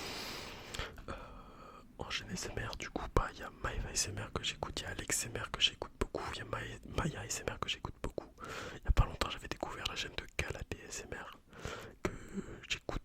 En chaîne ASMR, du coup, il y a Maeva ASMR que j'écoute, il y a Alex ASMR que j'écoute beaucoup, il y a Maya ASMR que j'écoute beaucoup. Il y a pas longtemps, j'avais découvert la chaîne de Calabé ASMR que j'écoute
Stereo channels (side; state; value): both; identical; correlation 1.00